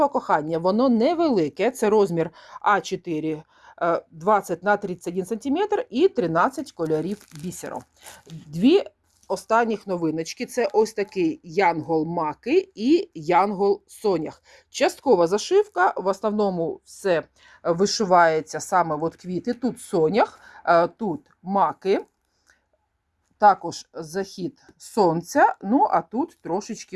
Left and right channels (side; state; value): both; identical; correlation 1.00